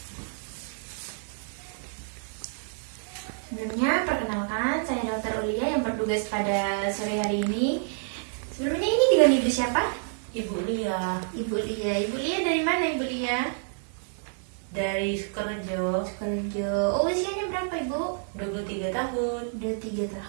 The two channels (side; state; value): left; silent; 57 dB below the other